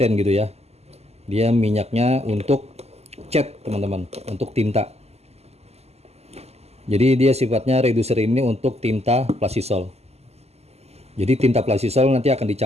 gitu ya. Dia minyaknya untuk cat, teman-teman, untuk tinta. Jadi dia sifatnya reducer ini untuk tinta plastisol. Jadi tinta plastisol nanti akan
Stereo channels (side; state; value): left; late; 0.30 ms